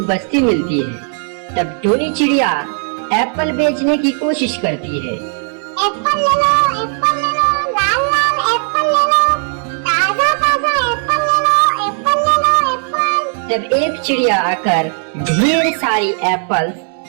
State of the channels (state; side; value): silent; left; 56 dB below the other